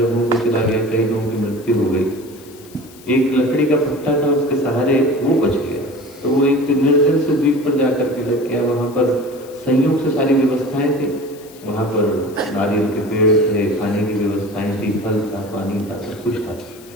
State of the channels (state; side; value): noise; left; hiss, 23 dB below the sound